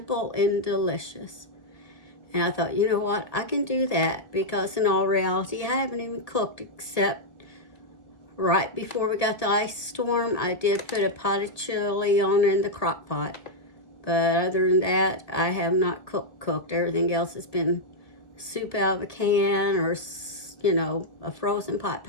and delicious. And I thought, you know what, I can do that, because in all reality, I haven't even cooked except right before we got the ice storm. I did put a pot of chili on in the crock pot. But other than that, I have not cooked. Everything else has been soup out of a can, or, a frozen pot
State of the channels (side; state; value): right; late; 1.7 ms